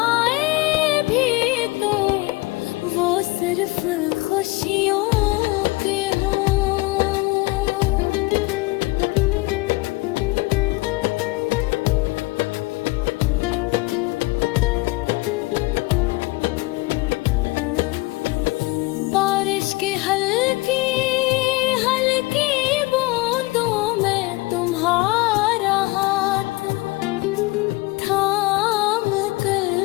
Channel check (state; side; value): quieter; right; 22.7 dB